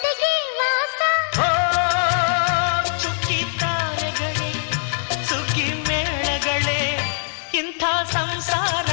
ವಾಸ ಓ ಚುಕ್ಕಿ ತಾರೆಗಳೇ ಸುಗ್ಗಿ ಮೇಳಗಳೇ ಇಂಥ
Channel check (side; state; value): right; silent; 57 dB below the other